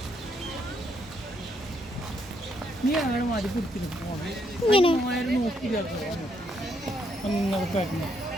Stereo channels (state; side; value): normal; both; correlation 0.74